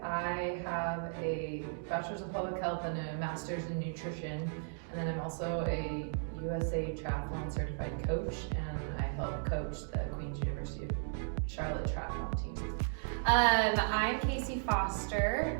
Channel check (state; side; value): silent; left; digital silence